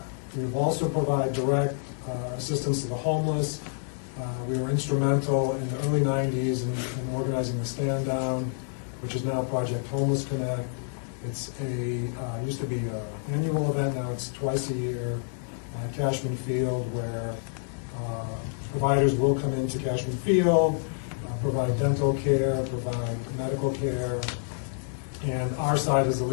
We also provide direct assistance to the homeless. We were instrumental in the early 90s in organizing the Stand Down, which is now Project Homeless Connect. It's used to be an annual event, now it's twice a year at Cashman Field, where providers will come into Cashman Field, provide dental care, provide medical care, and our side is the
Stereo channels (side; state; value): right; silent; digital silence